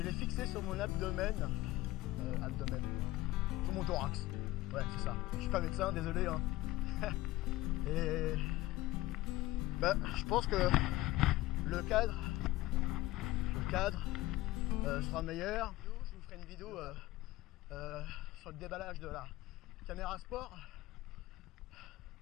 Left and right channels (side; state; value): right; quieter; 17.4 dB